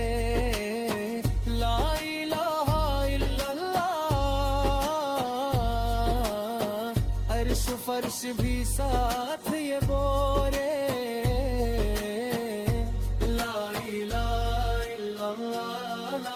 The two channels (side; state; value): both; identical; correlation 1.00